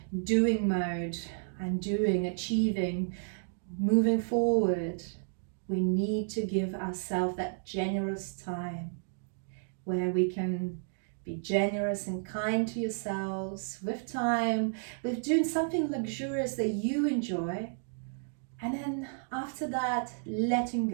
doing mode and achieving, moving forward. We need to give ourselves that generous time where we can be generous and kind to yourselves with time, with doing something luxurious that you enjoy. And then after that, letting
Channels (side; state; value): left; silent; digital silence